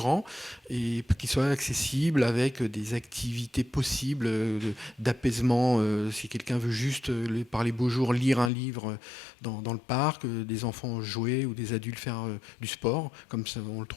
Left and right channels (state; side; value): drops out; right; at 8.5 s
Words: et qu'il soit accessible avec des activités possibles d'apaisement. Si quelqu'un veut juste, par les beaux jours, lire un livre dans le parc, des enfants jouer ou des adultes faire du sport, comme ça, on le